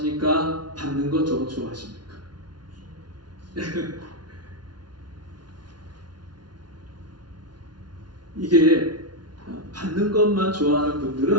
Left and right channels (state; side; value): late; left; 0.70 ms